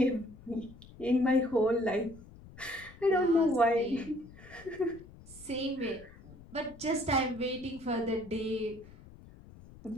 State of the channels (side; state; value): left; noise; rumble, 20 dB below the sound